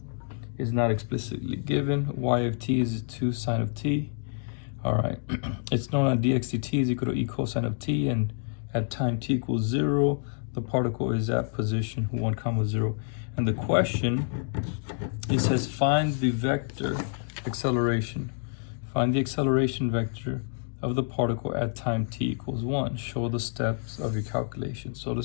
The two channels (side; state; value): right; silent; digital silence